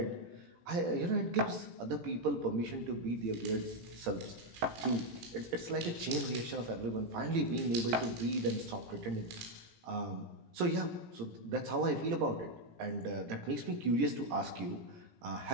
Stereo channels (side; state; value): left; late; 18 ms